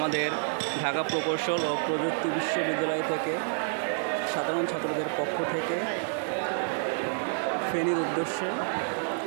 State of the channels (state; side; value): silent; left; digital silence